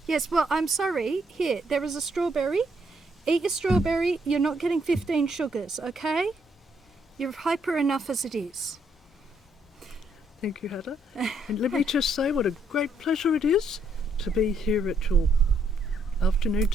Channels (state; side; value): normal; both; correlation 0.72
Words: Yes, well, I'm sorry. Here, there is a strawberry. Eat your strawberry. You're not getting 15 sugars, okay? You're hyper enough as it is. Thank you, Hedda. And let me just say what a great pleasure it is to be here at your afternoon